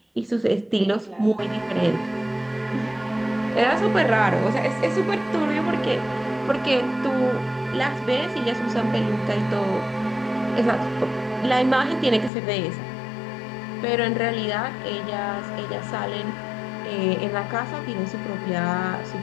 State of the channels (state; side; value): drops out; right; at 12.3 s